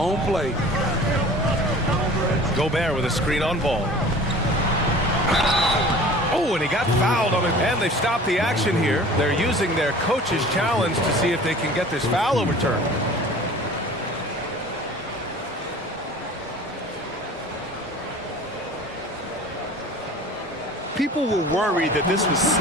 play. Gobert with a screen on ball. Oh, and he got fouled on it. And they've stopped the action here. They're using their coach's challenge to see if they can get this foul overturned. People were worried that this would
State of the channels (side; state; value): both; normal; correlation 0.44